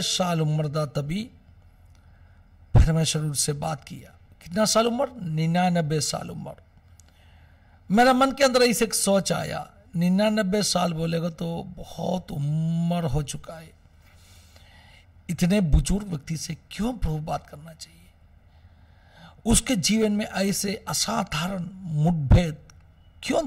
साल उम्र था तभी परमेश्वर उससे बात किया। कितना साल उम्र? 99 साल उम्र। मेरा मन के अंदर ऐसे एक सोच आया, 99 साल बोलेगा तो बहुत उम्र हो चुका है, इतने बुजुर्ग व्यक्ति से क्यों प्रभु बात करना चाहिए? उसके जीवन में ऐसे असाधारण मुठभेद क्यों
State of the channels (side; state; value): both; identical; correlation 1.00